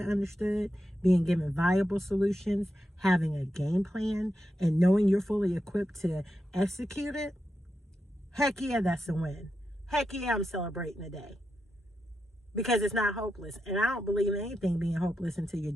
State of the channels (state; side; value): normal; both; correlation 0.87